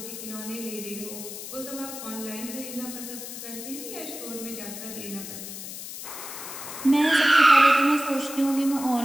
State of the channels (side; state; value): left; noise; hiss, 10 dB below the sound